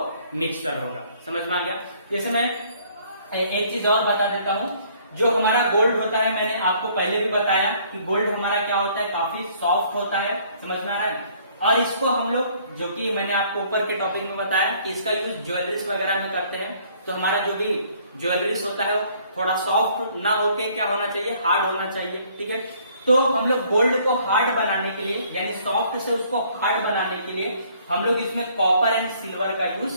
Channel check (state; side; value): inverted; both; correlation -0.60